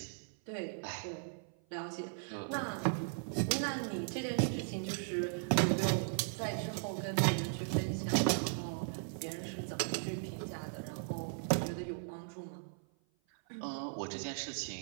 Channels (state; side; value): silent; left; 53 dB below the other